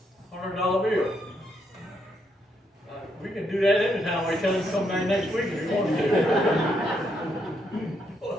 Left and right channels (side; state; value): both; normal; correlation 0.76